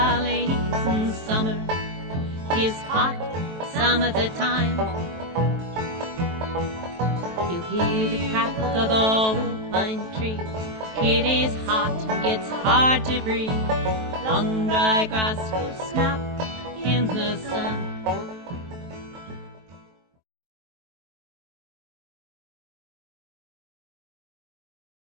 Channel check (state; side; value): late; left; 23 ms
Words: and summer is hot some of the time. You hear the crack of the old pine trees. It is hot and gets hard to breathe. Long dry grass will snap in the sun.